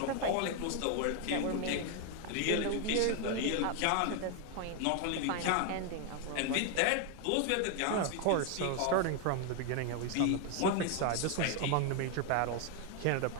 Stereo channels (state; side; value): different; both; correlation 0.01